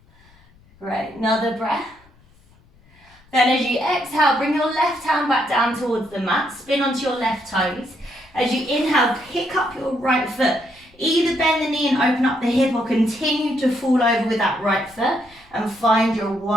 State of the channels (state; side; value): noise; left; rumble, 29 dB below the sound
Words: Great, another breath. Then as you exhale, bring your left hand back down towards the mat, spin onto your left toes. As you inhale, pick up your right foot. Either bend the knee and open up the hip, or continue to fall over with that right foot and find your